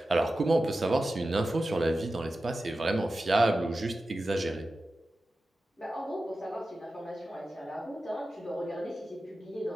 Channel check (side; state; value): both; normal; correlation 0.94